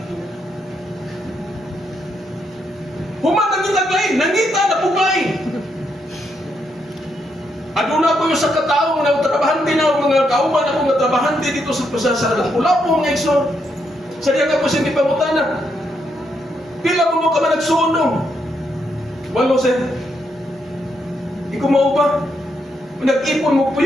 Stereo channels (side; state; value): both; normal; correlation 0.78